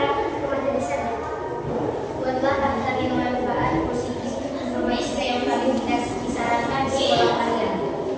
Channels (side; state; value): both; identical; correlation 1.00